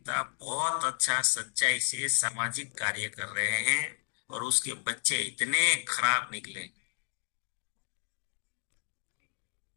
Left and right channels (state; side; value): silent; right; digital silence